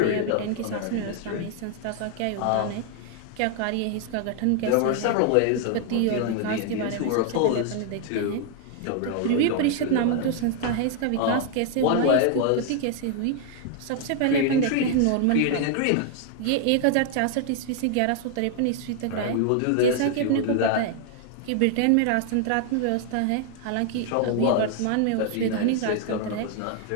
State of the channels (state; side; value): different; both; correlation 0.00